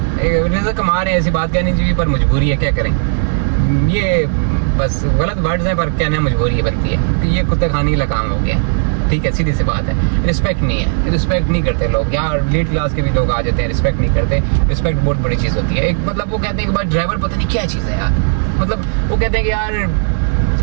रिज़्क कमा रहे हैं, ऐसी बात कहनी चाहिए, पर मजबूरी है, क्या करें। ये बस गलत वर्ड्स हैं पर कहना मजबूरी बनती है कि ये कुत्ते खाने का काम हो गया। ठीक है, सीधी सी बात है, रिस्पेक्ट नहीं है, रिस्पेक्ट नहीं करते लोग यार। लीड क्लास के भी लोग आ जाते हैं, रिस्पेक्ट नहीं करते। रिस्पेक्ट बहुत बड़ी चीज़ होती है। एक मतलब वो कहते हैं कि भाई ड्राइवर पता नहीं क्या चीज़ है यार, मतलब वो कहते हैं कि यार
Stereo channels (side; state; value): left; silent; digital silence